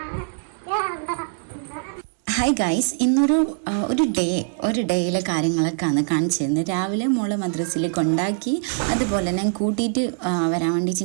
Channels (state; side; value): silent; left; digital silence